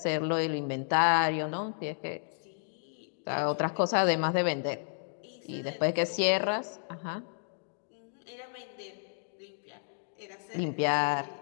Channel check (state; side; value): silent; right; digital silence